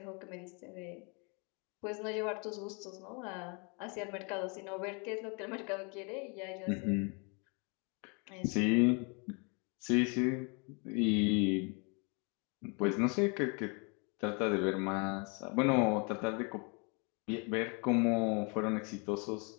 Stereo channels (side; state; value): right; quieter; 33.4 dB